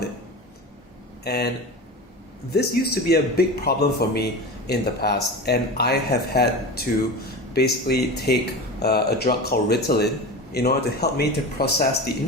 it. And this used to be a big problem for me in the past, and I have had to basically take a drug called Ritalin in order to help me to process the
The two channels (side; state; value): both; normal; correlation 0.28